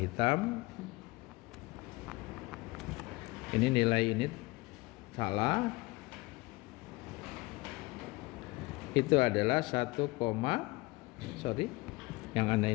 Ini nilai ini salah. Itu adalah yang anda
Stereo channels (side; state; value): right; quieter; 22.8 dB